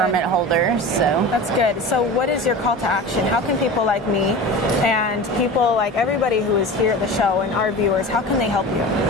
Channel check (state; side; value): normal; both; correlation 0.32